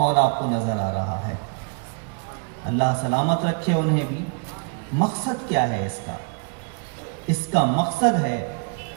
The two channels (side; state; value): left; quieter; 39.0 dB